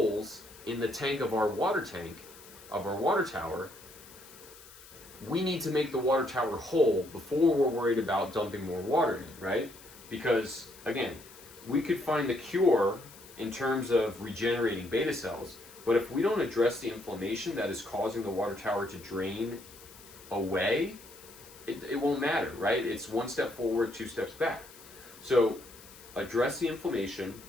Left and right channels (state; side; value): noise; left; hiss, 20 dB below the sound